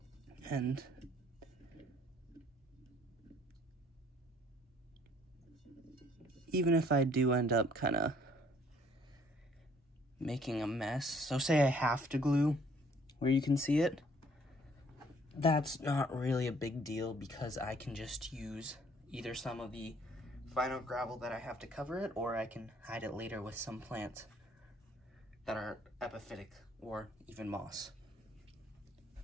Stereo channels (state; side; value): normal; both; correlation 0.60